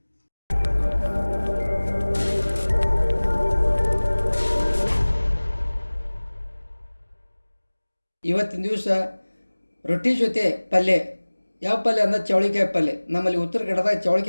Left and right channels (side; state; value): both; inverted; correlation -1.00